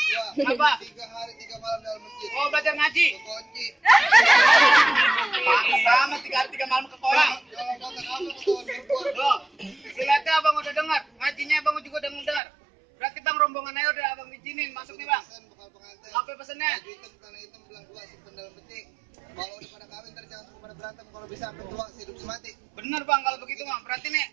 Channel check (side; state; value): left; drops out; at 12.4 s